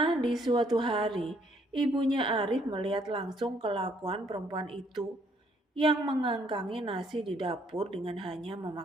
di suatu hari, ibunya Arif melihat langsung kelakuan perempuan itu yang mengangkangi nasi di dapur dengan hanya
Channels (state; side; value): normal; both; correlation 0.67